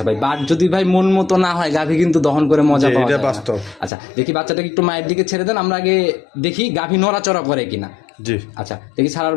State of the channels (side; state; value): right; drops out; at 3.9 s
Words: ভাই, বাট যদি ভাই মন মতো না হয়, গাভী কিন্তু দহন করে মজা পাওয়া যায়। এটা বাস্তব। আচ্ছা দেখি, বাচ্চাটাকে একটু মায়ের দিকে ছেড়ে দেন, আমরা আগে দেখি গাভী নড়াচড়া করে কিনা। জি, আচ্ছা দেখি, ছাড়ার